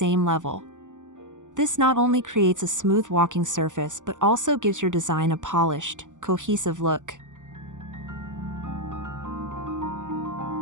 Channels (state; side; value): late; left; 0.86 ms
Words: level. This not only creates a smooth walking surface but also gives your design a polished, cohesive look.